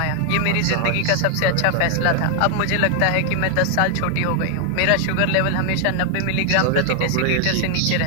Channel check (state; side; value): different; both; correlation 0.00